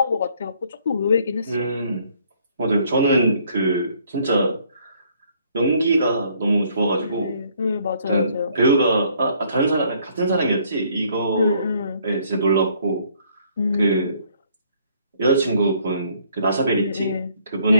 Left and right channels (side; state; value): both; inverted; correlation -0.64